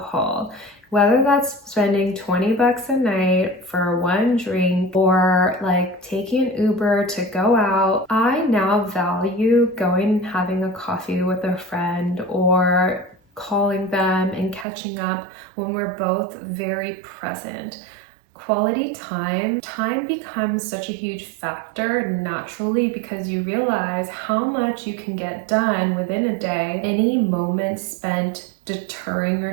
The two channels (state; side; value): drops out; left; at 14.7 s